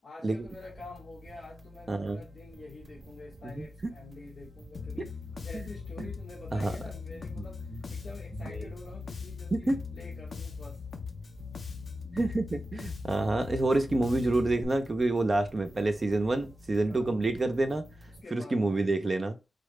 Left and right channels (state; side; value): normal; both; correlation 0.93